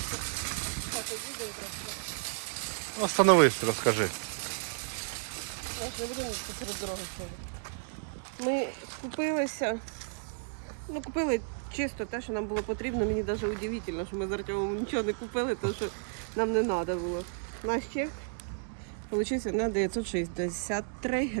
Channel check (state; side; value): silent; left; digital silence